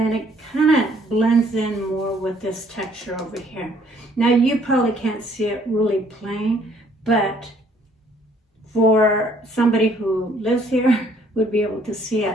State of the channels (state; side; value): normal; both; correlation 0.63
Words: it kind of blends in more with this texture over here. Now you probably can't see it really plain, but for somebody who lives here would be able to see